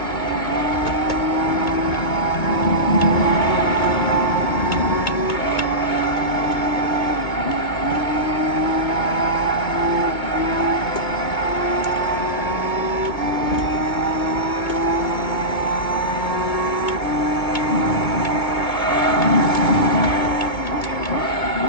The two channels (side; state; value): right; late; 2.2 ms